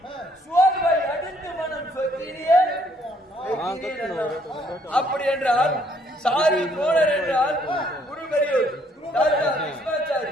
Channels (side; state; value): both; normal; correlation 0.66